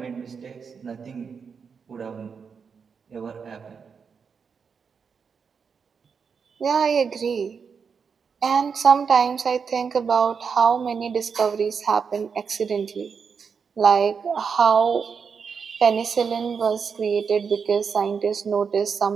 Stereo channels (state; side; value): quieter; left; 6.0 dB